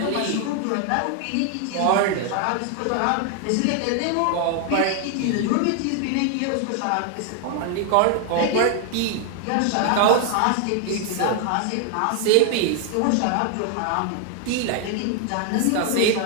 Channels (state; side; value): different; both; correlation 0.00